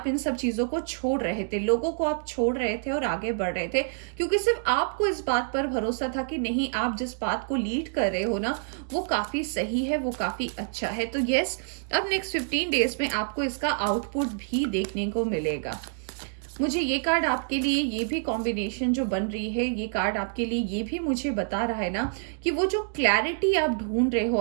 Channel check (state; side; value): silent; left; digital silence